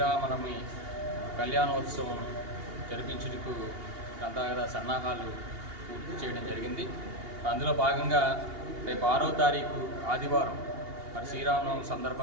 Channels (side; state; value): left; late; 2.8 ms